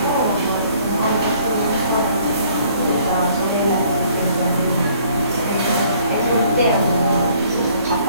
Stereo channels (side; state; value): both; inverted; correlation -0.60